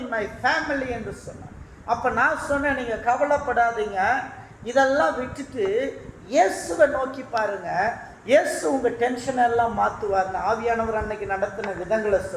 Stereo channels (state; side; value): identical; both; correlation 1.00